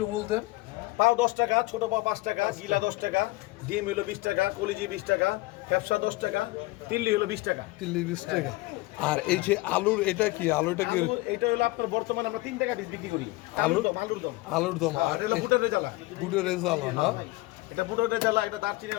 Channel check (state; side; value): quieter; right; 20.8 dB